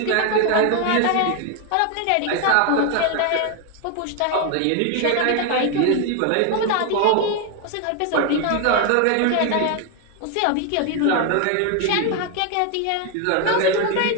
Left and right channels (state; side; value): different; both; correlation 0.01